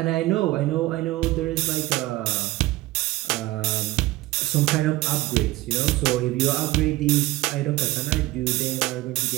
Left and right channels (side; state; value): left; quieter; 18.5 dB